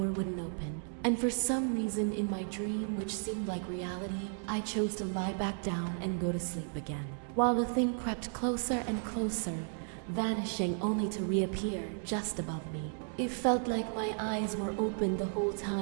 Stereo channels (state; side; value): silent; left; 55 dB below the other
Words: wouldn't open. And for some reason in my dream, which seemed like reality, I chose to lie back down and go to sleep again, while the thing crept closer and closer, vanishing only to reappear just above me. It felt like my eyes were open the whole